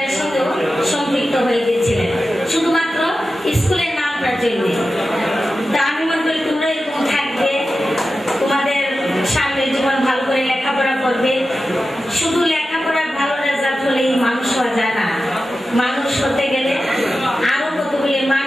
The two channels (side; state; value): both; normal; correlation 0.93